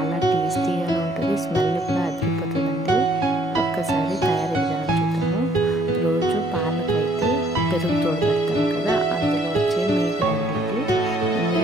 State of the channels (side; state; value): both; normal; correlation 0.64